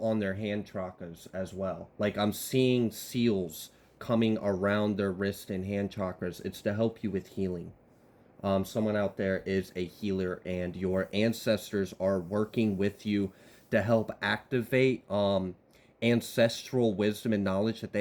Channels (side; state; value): both; identical; correlation 1.00